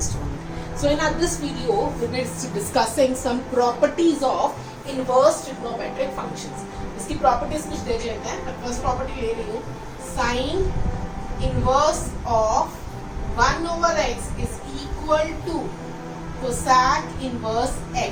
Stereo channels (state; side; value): identical; both; correlation 1.00